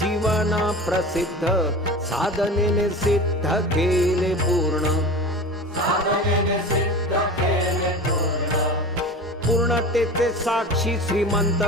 प्रसिद्ध साधनेने सिद्ध केले पूर्ण साधनेने सिद्ध केले पूर्ण पूर्णतेचे साक्षी श्रीमंत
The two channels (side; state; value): both; normal; correlation 0.33